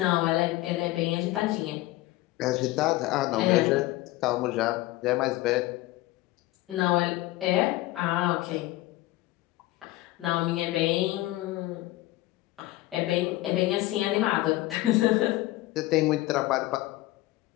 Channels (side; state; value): right; quieter; 17.7 dB